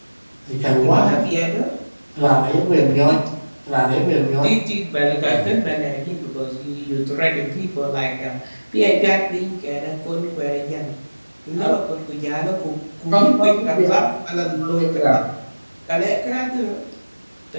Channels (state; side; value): inverted; both; correlation -1.00